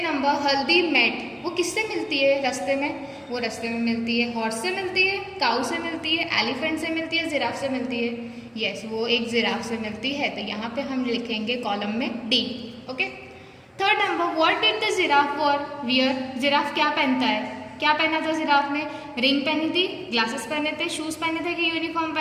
नंबर, हल्दी मेट, वो किससे मिलती है रास्ते में, वो रास्ते में मिलती है। हॉर्स से मिलती है, काऊ से मिलती है, एलिफेंट से मिलती है, जिराफ से मिलती है। यस, वो एक जिराफ से मिलती है। तो यहाँ पे हम लिखेंगे कॉलम में D. Okay, third number, what did the giraffe wear? Giraffe क्या पहनता है? क्या पहना था जिराफ ने? रिंग पहनी थी, ग्लासेस पहने थे, शूज पहने थे कि यूनिफॉर्म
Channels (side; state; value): both; identical; correlation 1.00